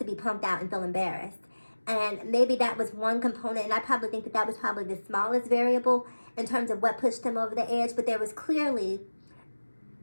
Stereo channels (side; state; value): both; inverted; correlation -1.00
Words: be pumped out and feel embarrassed. And maybe that was one component, and I probably think that that was probably the smallest variable in terms of what pushed him over the edge, but there was clearly